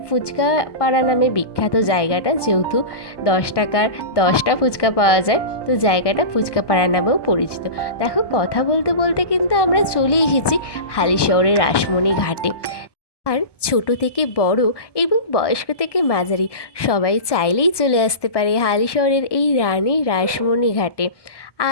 ফুচকাপাড়া নামে বিখ্যাত জায়গাটা, যেহেতু 10 টাকার 10টা ফুচকা পাওয়া যায়, তো জায়গাটা ফুচকাপাড়া নামেও পরিচিত। দেখো, কথা বলতে বলতে কিন্তু আমরা চলে এসেছি হালিশহরের রাসমণি ঘাটে। আর ছোট থেকে বড় এবং বয়স্ক থেকে মাঝারি সবাই চাইলেই চলে আসতে পারে হালিশহরের এই রানী রাসমণি ঘাটে।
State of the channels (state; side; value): late; right; 1.2 ms